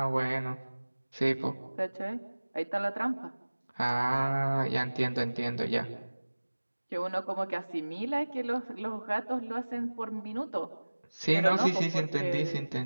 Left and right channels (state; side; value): inverted; both; correlation -1.00